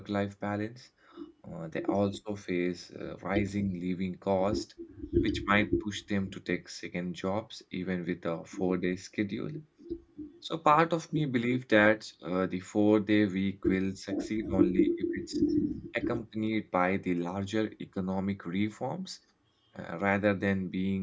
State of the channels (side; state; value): both; identical; correlation 1.00